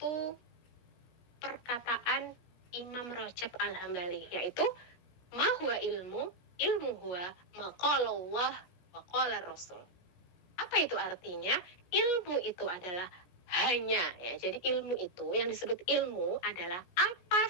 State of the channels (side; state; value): right; late; 17 ms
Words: perkataan Imam Rajab Al-Hambali, yaitu ma huwa ilmu huwa maqalallah wa qala Rasul. Apa itu artinya? Ilmu itu adalah hanya ya. Jadi ilmu itu yang disebut ilmu adalah apa